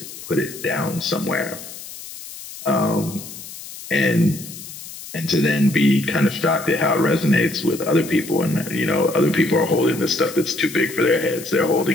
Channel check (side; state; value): left; noise; hiss, 13 dB below the sound